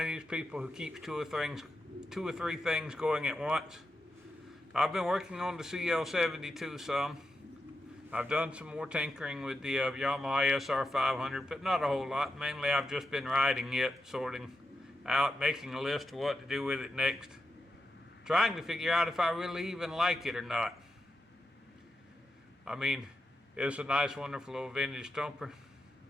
these people who keeps two or three things going at once. I've been working on the CL72 some. I've done some more tinkering with the Yamaha XS650, but not a whole lot. Mainly I've just been riding it, sorting out, making a list of what to do with it next, trying to figure out if I really even like it or not. I mean, it's a nice, wonderful old vintage thumper.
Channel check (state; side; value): normal; both; correlation 0.88